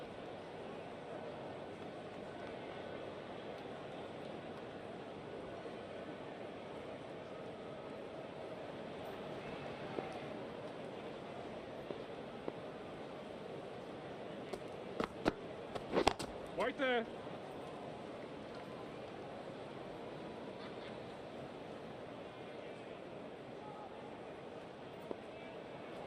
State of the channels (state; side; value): identical; both; correlation 1.00